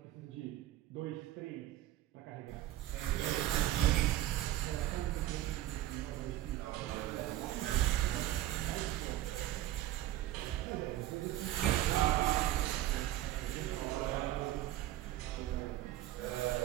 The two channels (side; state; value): left; quieter; 14.3 dB